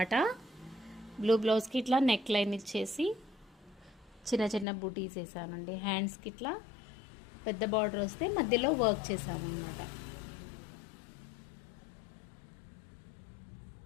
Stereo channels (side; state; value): right; drops out; at 4.7 s